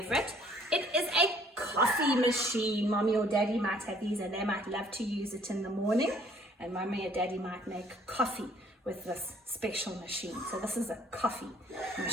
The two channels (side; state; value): both; normal; correlation 0.59